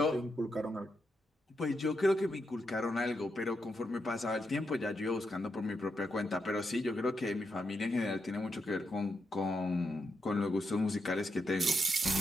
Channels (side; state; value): both; normal; correlation 0.83